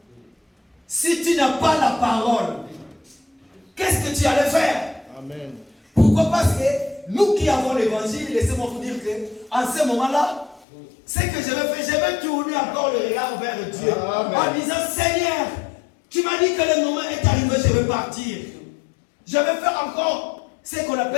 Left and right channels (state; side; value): drops out; right; at 10.7 s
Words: si tu n'as pas la parole, qu'est-ce que tu allais faire? Amen. Pourquoi? Parce que nous qui avons l'évangile, laissez-moi vous dire que en ce moment-là, ce que je vais faire, je vais tourner encore le regard vers Dieu. Amen. En disant, Seigneur, tu m'as dit que le moment est arrivé, je vais partir. Je vais faire encore ce qu'on